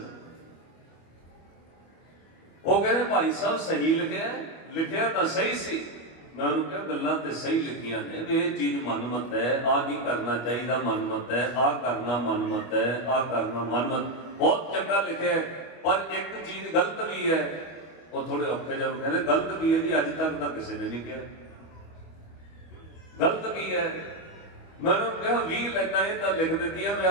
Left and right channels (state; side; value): late; right; 25 ms